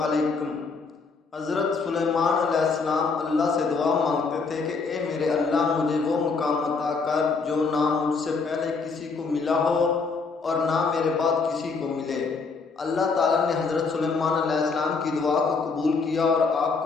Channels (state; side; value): quieter; right; 4.6 dB